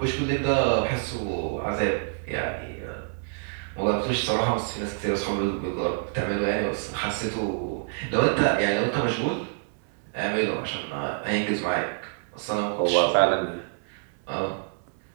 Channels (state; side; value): silent; left; digital silence